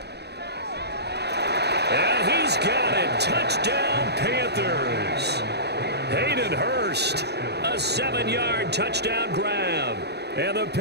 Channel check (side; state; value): left; late; 0.48 ms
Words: And he's got it. Touchdown, Panthers. Hayden Hurst, a 7-yard touchdown grab. And the